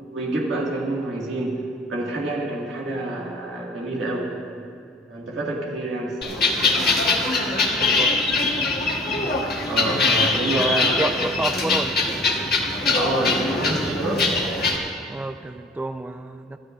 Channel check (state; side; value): normal; both; correlation 0.46